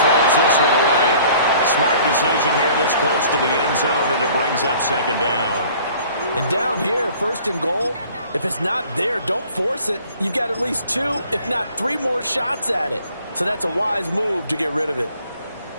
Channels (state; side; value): inverted; both; correlation -0.53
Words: this one away. Smart decision here this close to the end zone, and it brings up 2nd down. And down here, 1st and goal, if it's not there, don't force it. You've got at least 2, if not 3 more shots at it. So that's a wise move to get rid of it.